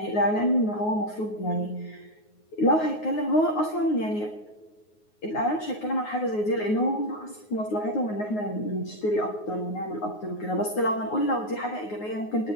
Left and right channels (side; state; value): right; late; 9.5 ms